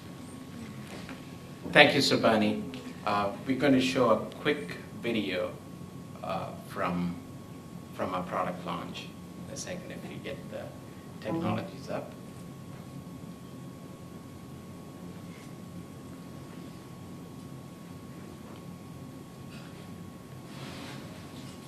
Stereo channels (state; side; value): identical; both; correlation 1.00